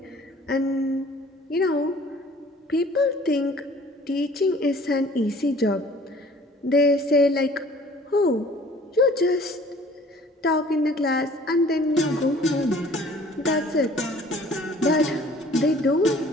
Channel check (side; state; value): both; normal; correlation 0.52